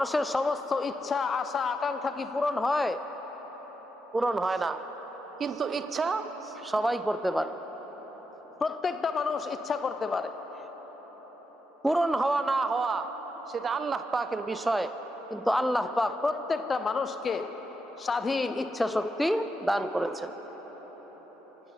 সমস্ত ইচ্ছা, আশা, আকাঙ্ক্ষা কি পূরণ হয়? পূরণ হয় না। কিন্তু ইচ্ছা সবাই করতে পারে, প্রত্যেকটা মানুষ ইচ্ছা করতে পারে। পূরণ হওয়া না হওয়া সেটা আল্লাহ পাকের বিষয়, কিন্তু আল্লাহ পাক প্রত্যেকটা মানুষকে স্বাধীন ইচ্ছা শক্তি দান করেছেন।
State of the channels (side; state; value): both; normal; correlation 0.85